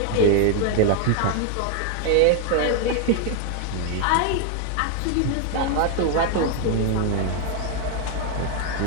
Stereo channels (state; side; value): different; both; correlation 0.01